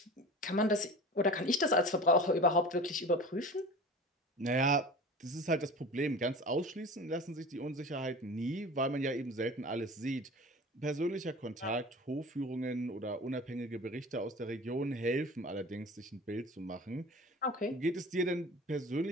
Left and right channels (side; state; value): both; normal; correlation 0.37